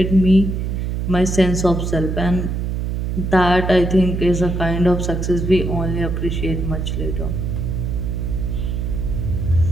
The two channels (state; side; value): noise; right; hum, 2 dB below the sound